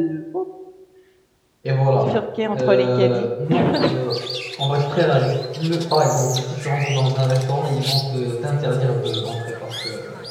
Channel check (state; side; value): identical; both; correlation 1.00